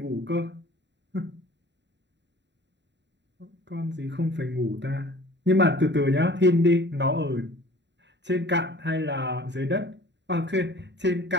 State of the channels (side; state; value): left; late; 0.52 ms